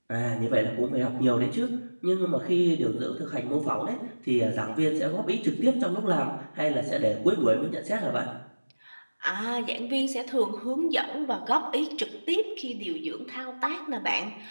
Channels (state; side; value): inverted; both; correlation -1.00